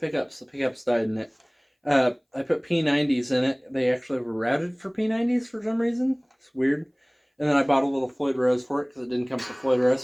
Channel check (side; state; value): both; identical; correlation 1.00